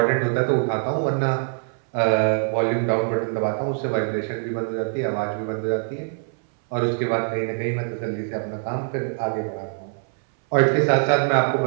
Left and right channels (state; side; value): silent; left; 61 dB below the other